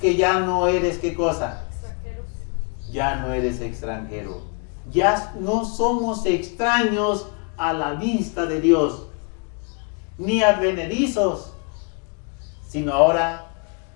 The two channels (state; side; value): quieter; right; 35.7 dB